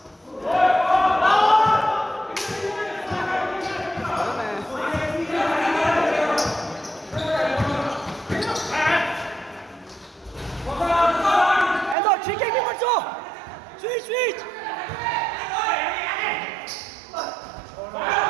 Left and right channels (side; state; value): left; drops out; at 12.0 s